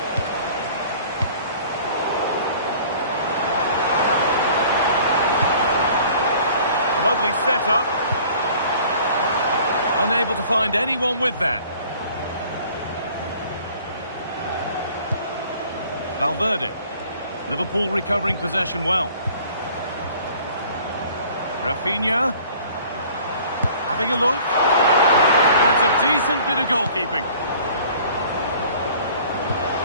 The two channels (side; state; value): both; inverted; correlation -0.51